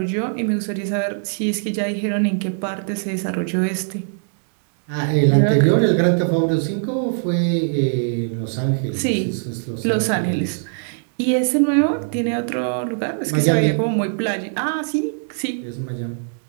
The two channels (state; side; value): silent; left; digital silence